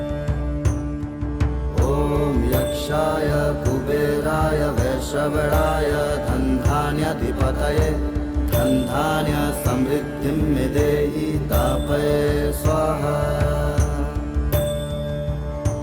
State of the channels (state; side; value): identical; both; correlation 1.00